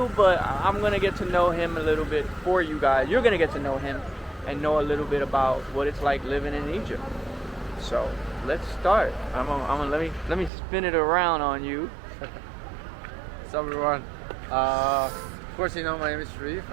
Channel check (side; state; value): left; drops out; at 10.5 s